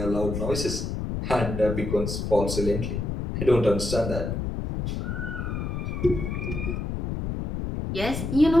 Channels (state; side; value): noise; left; rumble, 3 dB below the sound